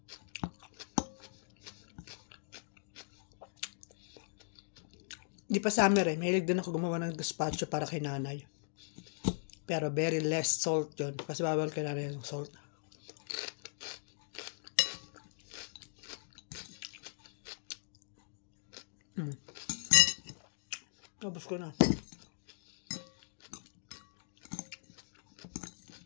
Di pa summer eh. Mahilig din ako gumawa ng gazpacho para kay nanay. Pero very less salt yun. Kasi bawal kay nanay yung salt. Tapos ko na.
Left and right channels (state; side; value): silent; right; digital silence